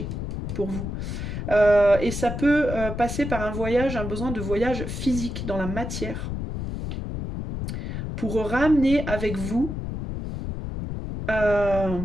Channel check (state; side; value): noise; left; rumble, 5 dB below the sound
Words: pour vous. Et ça peut passer par un besoin de voyage physique dans la matière, pour ramener avec vous